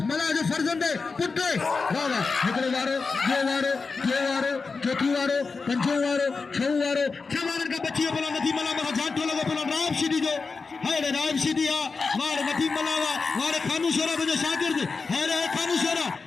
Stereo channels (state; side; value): quieter; right; 4.5 dB